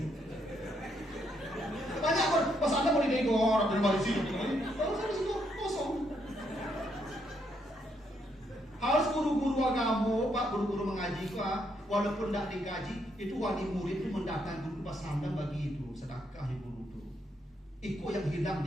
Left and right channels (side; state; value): both; normal; correlation 0.75